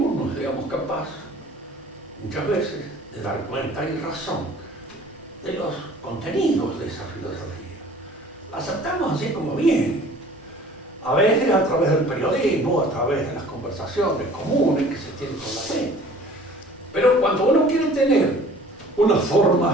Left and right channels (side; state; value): both; normal; correlation 0.49